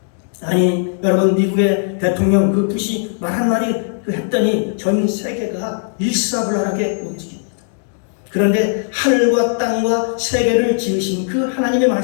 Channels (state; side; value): silent; right; digital silence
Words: 아니 여러분 미국의 대통령 그 부시 말 한마디 했더니 전 세계가 일사불란하게 움직입니다. 그런데 하늘과 땅과 세계를 지으신 그 하나님의